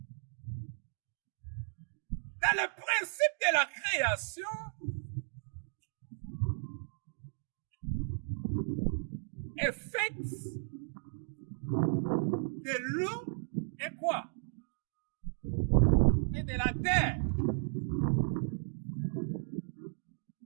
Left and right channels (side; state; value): left; silent; digital silence